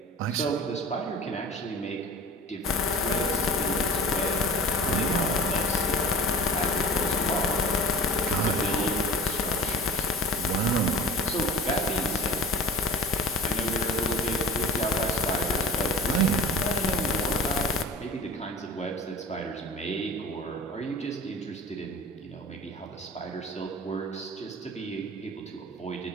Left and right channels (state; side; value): normal; both; correlation 0.40